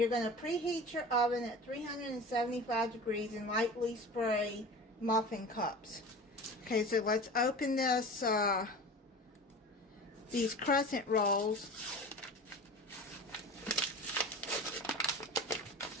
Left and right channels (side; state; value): both; normal; correlation 0.36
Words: going to preheat your oven at 375 degrees and lightly spray muffin cups. Okay, so let's open this, these crescent rolls.